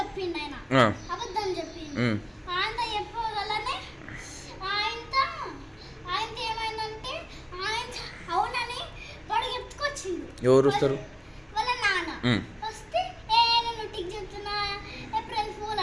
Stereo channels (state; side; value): identical; both; correlation 1.00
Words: ఆయన అబద్ధం చెప్పిండు. ఆయన చెప్పగలనే ఆయన ఏమైందంటే ఆయన అవునని వాడు ఎత్తుకొచ్చిండు. ఎవరు వస్తారు? వాళ్ళ నాన్న వస్తే నువ్వు టిక్ చెప్తున్నా ఏప్రిల్ ఫూల్